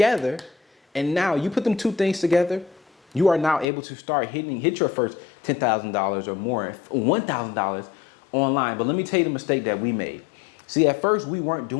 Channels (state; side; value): drops out; right; at 3.7 s